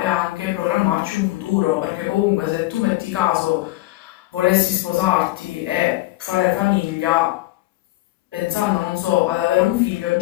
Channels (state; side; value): quieter; right; 18.0 dB